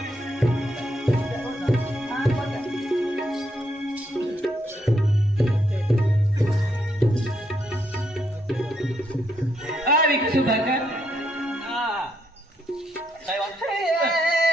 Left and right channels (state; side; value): normal; both; correlation 0.76